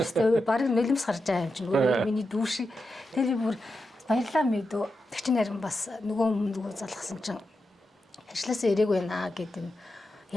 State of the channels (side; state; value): both; normal; correlation 0.89